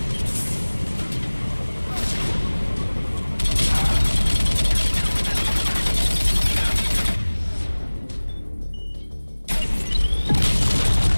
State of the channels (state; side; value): inverted; both; correlation -1.00